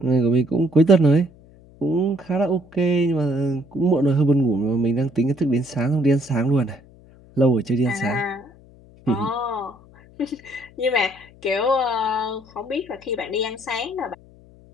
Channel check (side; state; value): left; noise; hum, 25 dB below the sound